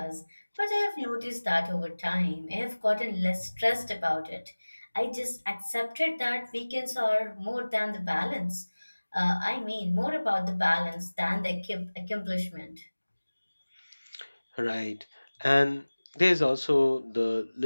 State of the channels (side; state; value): both; inverted; correlation -1.00